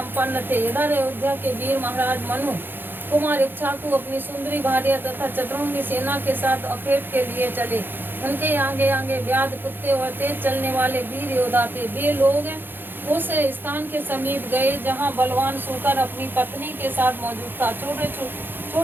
थे। इधर अयोध्या के वीर महाराज मनु कुमार इक्ष्वाकु अपनी सुंदरी भार्या तथा चतुरंगी सेना के साथ अखेट के लिए चले। उनके आगे आगे व्याध, कुत्ते और तेज चलने वाले वीर योद्धा थे। वे लोग उस स्थान के समीप गए जहां बलवान सूकर अपनी पत्नी के साथ मौजूद था।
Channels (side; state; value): left; late; 0.098 ms